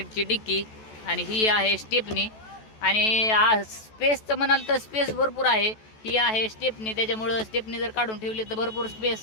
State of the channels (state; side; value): late; right; 14 ms